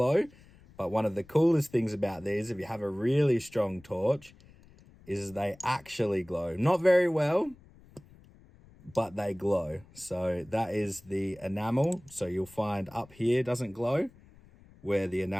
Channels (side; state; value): left; noise; rumble, 25 dB below the sound